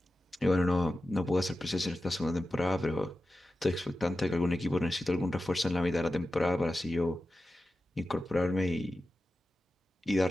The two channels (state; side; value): normal; both; correlation 0.93